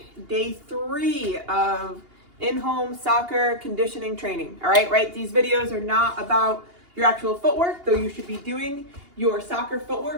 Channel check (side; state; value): left; late; 2.8 ms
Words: day 3 of in-home soccer conditioning training. All right, these videos are not about your actual footwork, though you should be doing your soccer